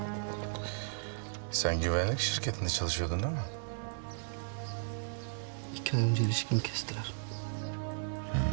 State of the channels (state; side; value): silent; left; digital silence